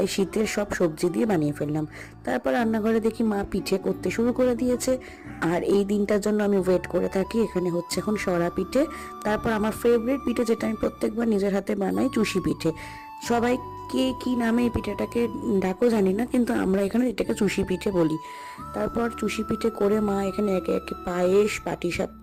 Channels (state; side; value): identical; both; correlation 1.00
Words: শীতের সব সবজি দিয়ে বানিয়ে ফেললাম। তারপর রান্নাঘরে দেখি মা পিঠে করতে শুরু করে দিয়েছে, আর এই দিনটার জন্য আমি ওয়েট করে থাকি। এখানে হচ্ছে এখন সরা পিঠে, তারপর আমার ফেভারিট পিঠে যেটা আমি প্রত্যেকবার নিজের হাতে বানাই, চুষি পিঠে। সবাই কে কি নামে এই পিঠেটাকে ডাকো জানি না, কিন্তু আমরা এখানে এটাকে চুষি পিঠে বলি। তারপর চুষি পিঠে করে মা এখানে একে একে পায়েস,